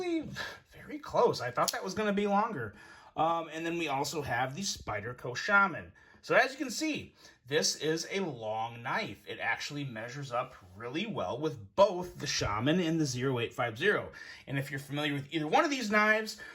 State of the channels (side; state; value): both; identical; correlation 1.00